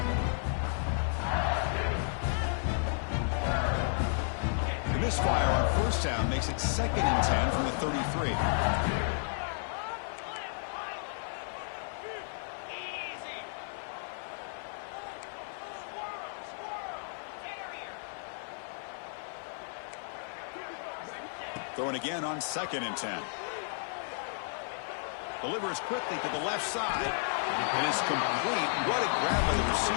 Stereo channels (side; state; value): right; silent; digital silence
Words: The misfire on first down makes it second and 10 from the 33. Throwing again on second and 10. Delivers quickly to the left side. And it's complete. What a grab by the